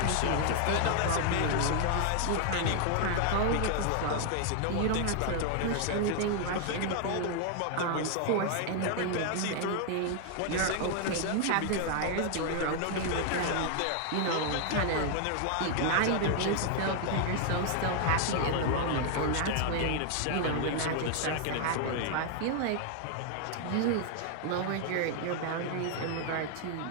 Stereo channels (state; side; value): different; both; correlation 0.00